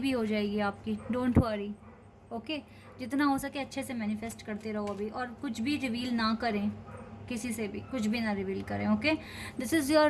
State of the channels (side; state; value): both; identical; correlation 1.00